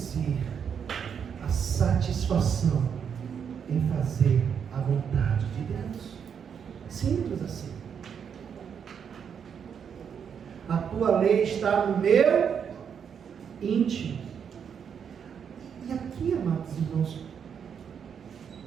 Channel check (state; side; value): quieter; left; 7.4 dB